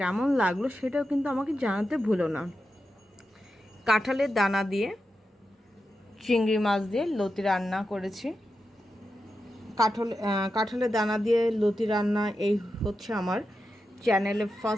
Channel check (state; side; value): normal; both; correlation 0.89